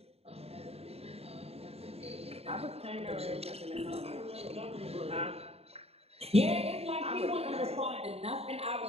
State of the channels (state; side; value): late; left; 0.29 ms